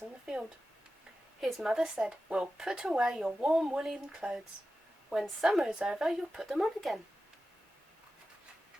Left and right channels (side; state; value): both; normal; correlation 0.93